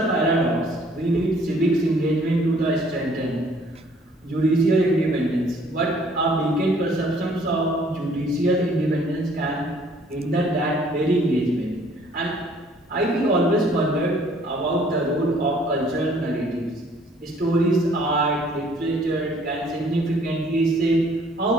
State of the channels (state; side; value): normal; both; correlation 0.59